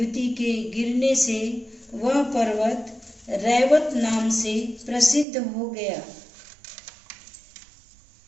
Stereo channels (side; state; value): left; drops out; at 5.2 s